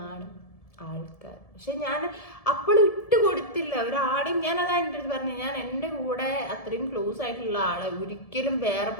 ആൾക്കാർ. പക്ഷെ ഞാൻ അപ്പോഴും ഇട്ട് കൊടുത്തില്ല ഒരാളെയും. ഞാനതാ എൻ്റെ അടുത്ത് പറഞ്ഞു, ഞാൻ എൻ്റെ കൂടെ അത്രയും ക്ലോസ് ആയിട്ടുള്ള ആളെ ഒരിക്കലും വേറെ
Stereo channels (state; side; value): late; right; 1.7 ms